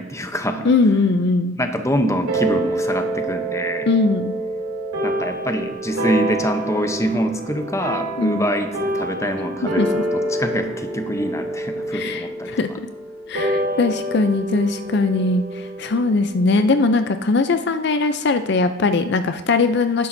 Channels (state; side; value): normal; both; correlation 0.48